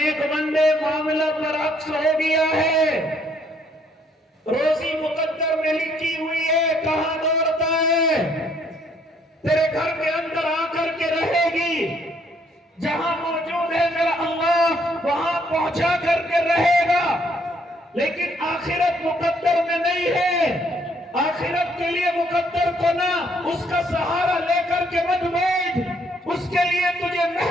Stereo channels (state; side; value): normal; both; correlation 0.67